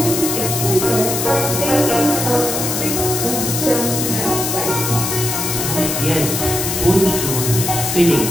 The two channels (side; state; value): left; noise; hiss, 2 dB below the sound